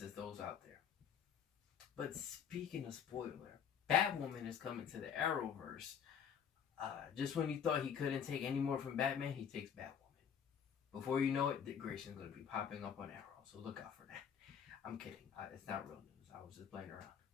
those out there. But speaking of spoiler, Batwoman is coming to the Arrowverse. Just when you thought he couldn't take any more from Batman, he takes Batwoman. Before you know it, Dick Grayson's going to be popping up on Arrow, so look out for that. I'm kidding. It's not real news. I was just playing around.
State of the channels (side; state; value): right; quieter; 7.9 dB